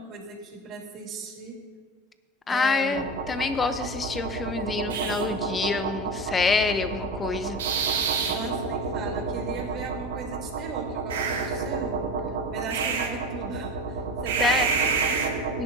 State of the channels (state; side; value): normal; both; correlation 0.26